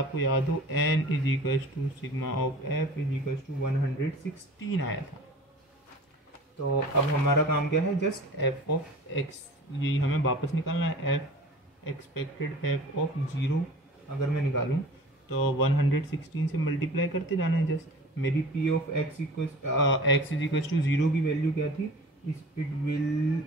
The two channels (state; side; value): normal; both; correlation 0.41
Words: याद हो, n is equals to sigma of f is equals to 116 आया था। तो अब हमारा काम क्या है, जस्ट f ऑफ x, यही हमें वापस निकालना है। f एक्सपेक्टेड f ऑफ 0 अगर मैं निकालूं तो 116 से मल्टीप्लाई करते जाना है। जस्ट मेरी p of x is equals to 0 की वैल्यू क्या थी, इट विल